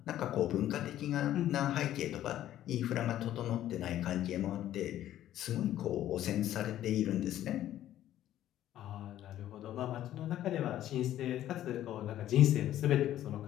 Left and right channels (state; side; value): quieter; right; 12.6 dB